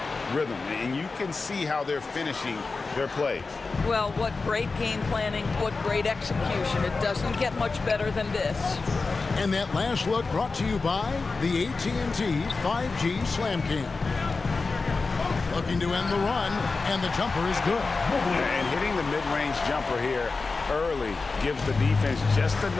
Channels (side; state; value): right; quieter; 4.0 dB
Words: rhythm, and you can see how they're finishing their plays. Well, what great game planning, what great execution. It doesn't get much better than this. And that last look brought to you by the AT&T 5G Slam Cam. Looking to end the run, and the jumper is good. And hitting the mid-range jumper here early gives the defense just